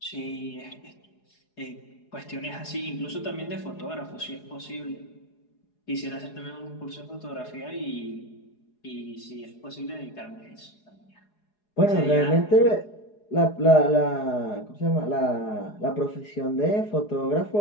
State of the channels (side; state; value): right; late; 4.8 ms